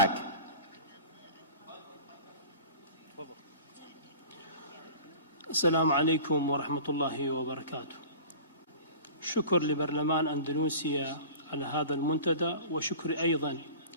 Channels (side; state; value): both; inverted; correlation -0.40